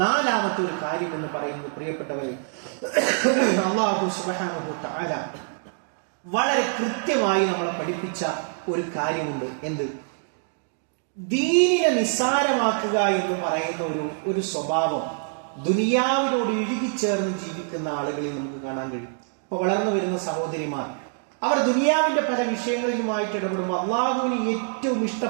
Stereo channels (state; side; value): silent; left; 62 dB below the other